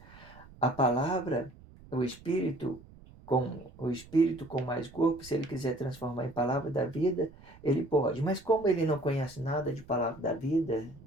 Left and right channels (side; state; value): right; noise; rumble, 21 dB below the sound